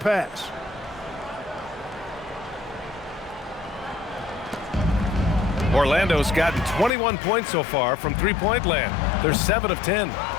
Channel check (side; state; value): right; drops out; at 6.9 s